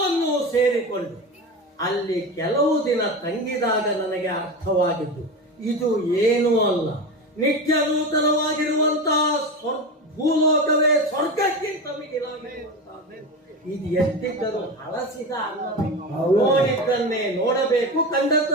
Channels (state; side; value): normal; both; correlation 0.23